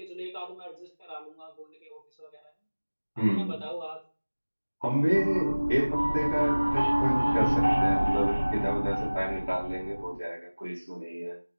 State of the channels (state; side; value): inverted; both; correlation -1.00